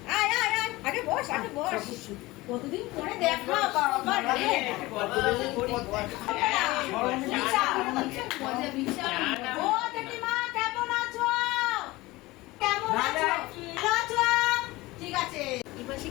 আয় আয় আয়, আগে বস, আগে বস। কতদিন পরে দেখা বাবা রে। ও জেঠিমা কেমন আছো? কেমন আছো? আছো? ঠিক আছে। এবারে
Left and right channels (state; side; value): quieter; right; 20.2 dB